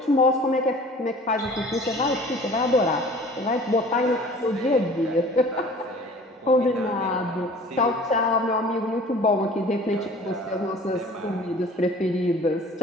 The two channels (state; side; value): normal; both; correlation 0.47